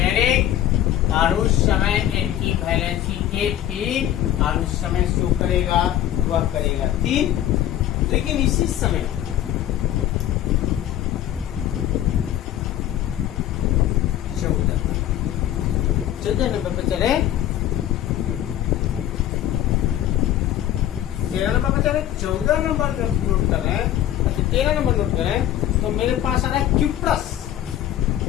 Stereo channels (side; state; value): right; quieter; 12.0 dB